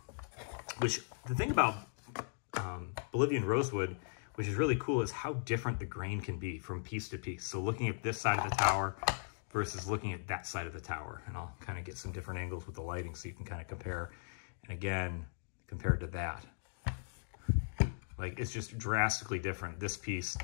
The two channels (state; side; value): silent; right; digital silence